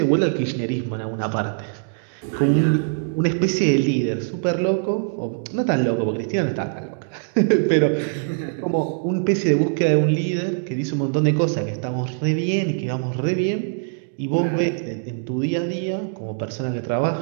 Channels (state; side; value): silent; left; digital silence